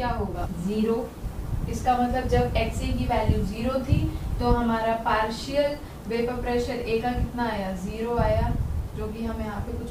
होगा 0। इसका मतलब जब एक्स ए की वैल्यू 0 थी तो हमारा पार्शियल वेपर प्रेशर ए का कितना आया, 0 आया, जो कि हम यहाँ पे कुछ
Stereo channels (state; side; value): identical; both; correlation 1.00